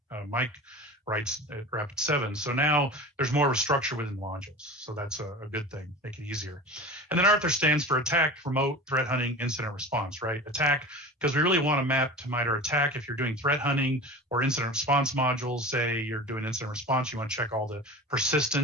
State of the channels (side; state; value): both; normal; correlation 0.34